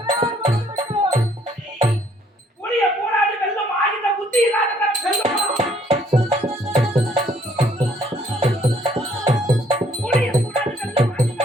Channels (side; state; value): both; normal; correlation 0.64